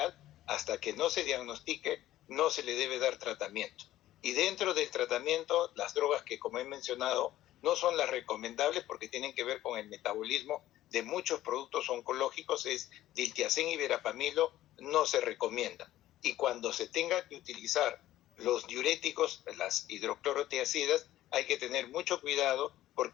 hasta que no se diagnostique, no se le debe dar tratamiento. Y dentro del tratamiento, las drogas que, como he mencionado, no son las recomendables porque tienen que ver con el metabolismo de muchos productos oncológicos, es diltiazem y verapamilo, no se recomienda. Y cuando se tenga que utilizar los diuréticos, las hidroclorotiazidas, hay que tener mucho cuidado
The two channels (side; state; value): right; quieter; 14.2 dB